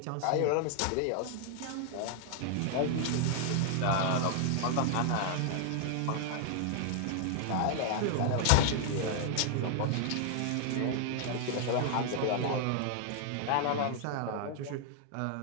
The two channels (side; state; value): both; different; correlation 0.00